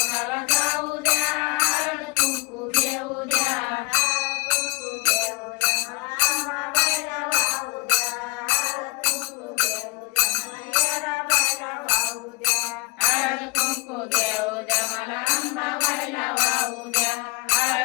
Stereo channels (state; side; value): quieter; right; 23.6 dB